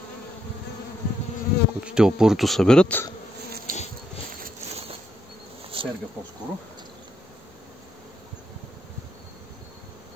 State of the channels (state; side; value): normal; both; correlation 0.77